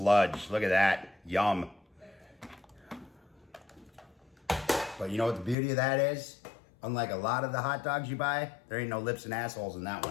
Look at that, yum. But you know what the beauty of that is? Unlike a lot of the hot dogs you buy, there ain't no lips and assholes in that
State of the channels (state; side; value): drops out; right; at 5.6 s